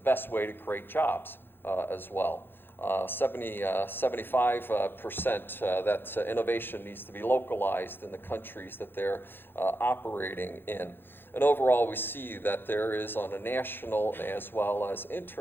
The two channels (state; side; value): late; right; 0.10 ms